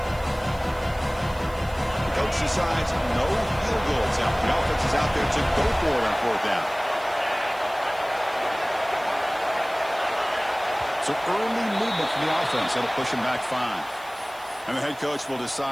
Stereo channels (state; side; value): noise; right; hiss, 22 dB below the sound